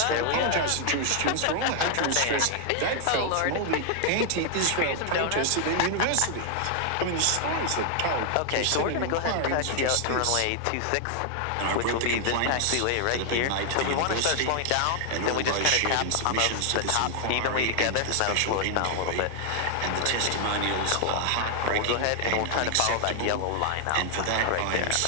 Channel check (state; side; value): different; both; correlation 0.00